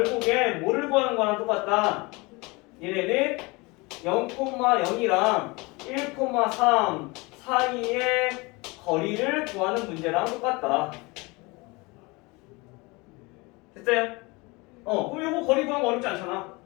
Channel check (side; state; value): right; quieter; 25.5 dB